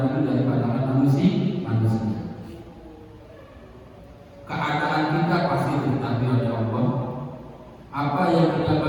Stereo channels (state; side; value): identical; both; correlation 1.00